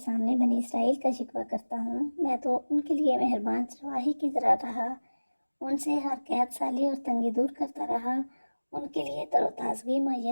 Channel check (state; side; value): inverted; both; correlation -1.00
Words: بنی اسرائیل کا شکوہ کرتا ہوں، میں تو ان کے لیے مہربان چرواہی کی طرح رہا، ان سے ہر قحط سالی اور تنگی دور کرتا رہا، ان کے لیے تر و تازگی